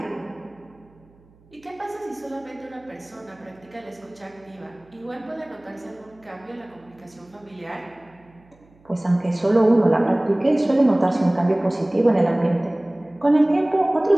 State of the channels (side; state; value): right; noise; hum, 30 dB below the sound